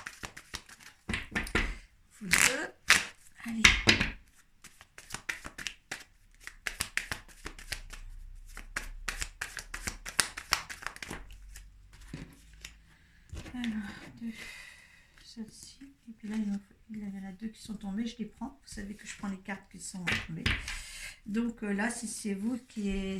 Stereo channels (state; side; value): identical; both; correlation 1.00